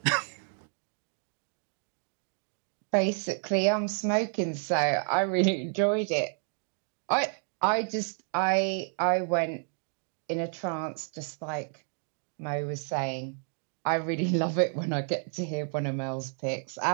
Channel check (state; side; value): silent; left; 58 dB below the other